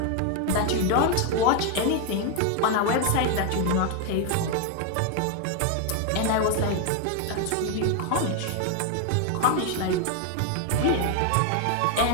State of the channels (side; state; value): both; different; correlation 0.01